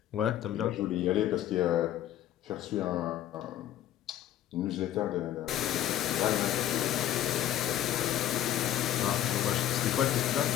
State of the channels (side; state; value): right; quieter; 12.0 dB